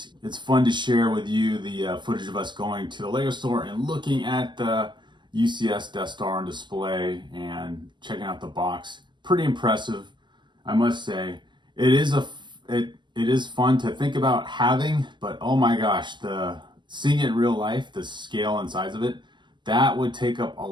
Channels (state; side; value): late; left; 0.22 ms